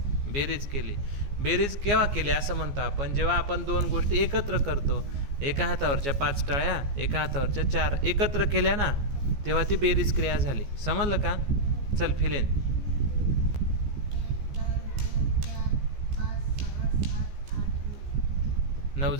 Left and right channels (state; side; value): late; left; 14 ms